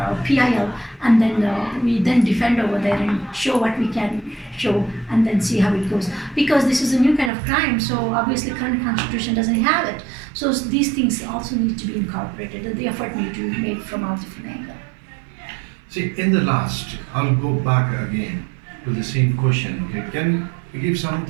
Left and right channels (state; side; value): drops out; left; at 7.3 s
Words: PIL, and then we then defend over there and show what we can show, and then see how it goes. Because this is a new kind of crime, so obviously current constitution doesn't have it. So these things also need to be incorporated, and the effort need to be made from all different angles. See, in the last, I'll go back again to the same question. Okay, can you give